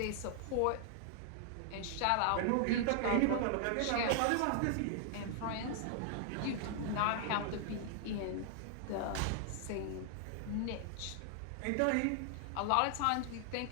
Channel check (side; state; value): both; different; correlation -0.01